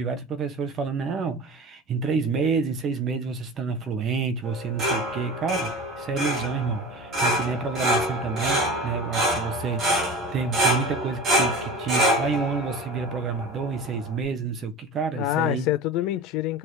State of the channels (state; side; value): normal; both; correlation 0.34